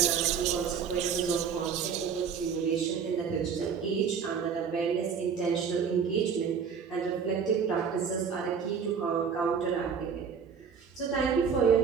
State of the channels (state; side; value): quieter; left; 6.6 dB